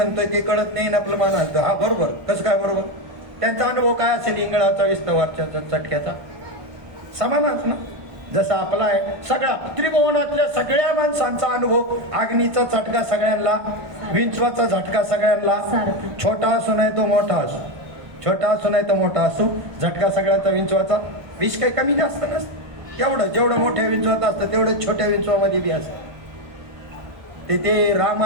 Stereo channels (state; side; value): late; left; 1.5 ms